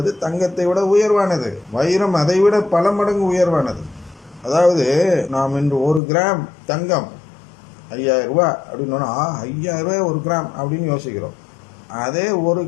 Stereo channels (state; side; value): drops out; right; at 6.0 s